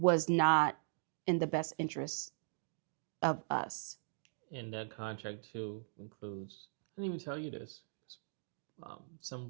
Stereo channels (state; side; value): silent; left; digital silence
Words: not in the best interest of us. And that contract too includes, I didn't even tell you this, some